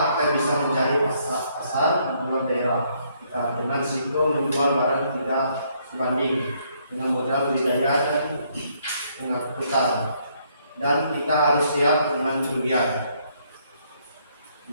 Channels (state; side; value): inverted; both; correlation -0.70